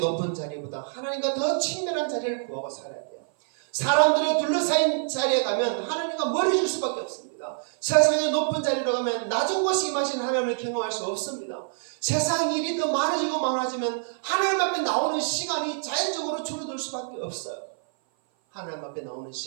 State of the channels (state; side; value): silent; left; 57 dB below the other